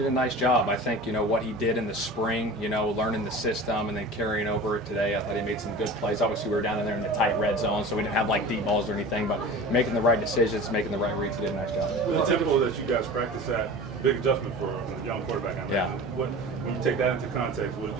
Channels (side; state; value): both; normal; correlation 0.36